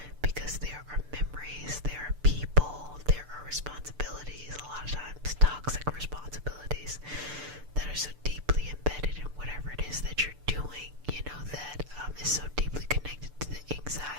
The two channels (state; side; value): late; left; 6.8 ms